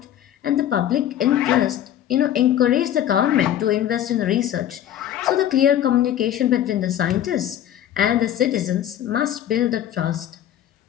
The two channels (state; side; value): quieter; right; 11.3 dB